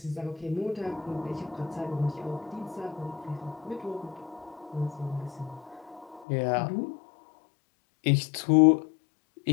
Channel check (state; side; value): drops out; right; at 6.2 s